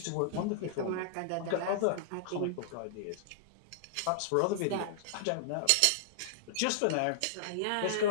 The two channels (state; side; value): different; both; correlation -0.01